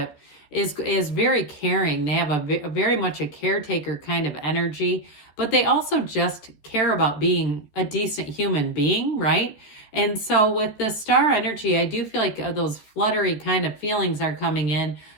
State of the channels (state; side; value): late; right; 14 ms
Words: is very caring. They have a very much a caretaker kind of energy, but they also just care about being a decent human being, right? And so with the star energy, I do feel like those fluttery kind of feelings are coming in,